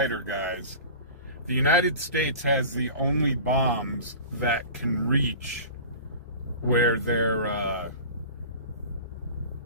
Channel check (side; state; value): both; inverted; correlation -0.37